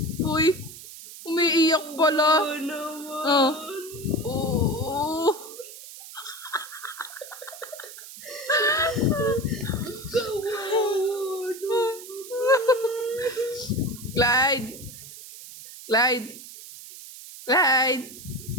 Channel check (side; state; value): right; noise; hiss, 15 dB below the sound